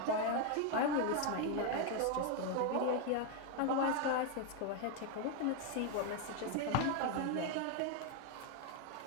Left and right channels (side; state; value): both; different; correlation 0.01